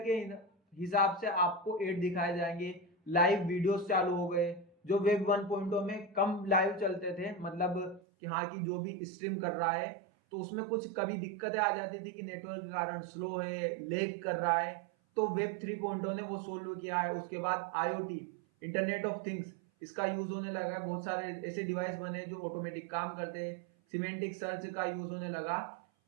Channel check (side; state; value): left; drops out; at 8.0 s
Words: हिसाब से आपको एड दिखाए जाएंगे। लाइव वीडियोस चालू हो गए, जो वेब 1.0 में कम लाइव चलते थे, मतलब कि हाँ कि जो भी स्ट्रीम कर रहा है तो उसमें कुछ कभी दिक्कतें आ जाती थी कि नेटवर्क के कारण स्लो है, लेग कर रहा है, तो वेब 3.0 ने वो सोल्व किया है। उसके बाद IoT, इंटरनेट ऑफ थिंग्स, इसका यूज होने लगा है, बहुत सारे ऐसे डिवाइस बने जो ऑटोमेटिक काम करते हैं। सिमेंटिक सर्च का यूज होने लगा।